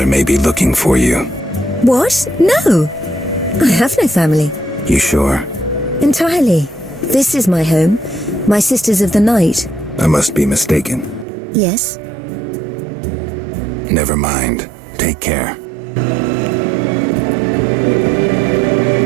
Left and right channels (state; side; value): drops out; left; at 11.2 s